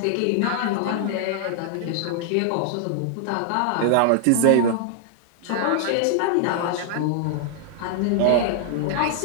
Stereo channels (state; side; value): different; both; correlation -0.01